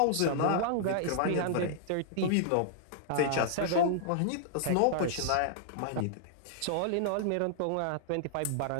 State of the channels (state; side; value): different; both; correlation -0.01